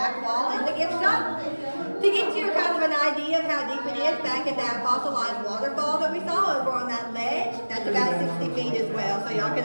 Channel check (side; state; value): both; inverted; correlation -1.00